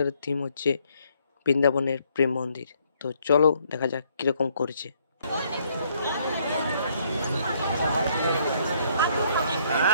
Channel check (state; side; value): inverted; both; correlation -0.68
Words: থিম হচ্ছে বৃন্দাবনের প্রেম মন্দির। তো চলো দেখা যাক কিরকম করেছে।